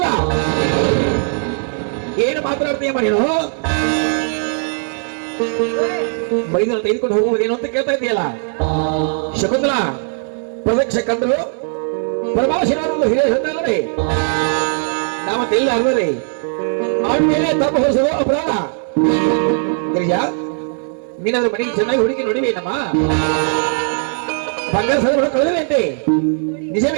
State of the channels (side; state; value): left; silent; 66 dB below the other